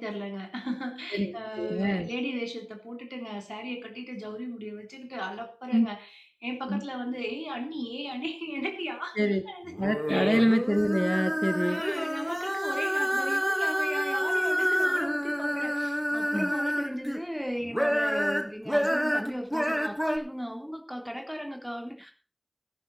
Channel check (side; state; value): both; identical; correlation 1.00